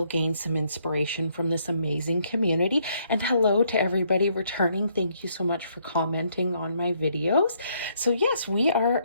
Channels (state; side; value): inverted; both; correlation -0.71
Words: gain some inspiration from this amazing community. And hello to everybody returning. Thank you so much for commenting on my videos. So yes, we are